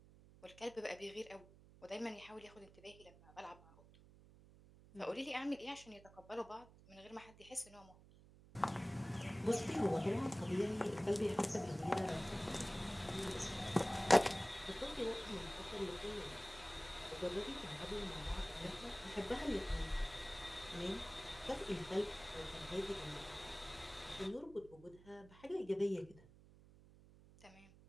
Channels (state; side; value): noise; right; hum, 22 dB below the sound